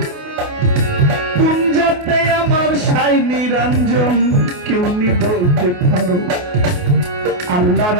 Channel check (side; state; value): left; late; 28 ms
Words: নিরঞ্জন কেউ নি বলতে পারো আল্লাহ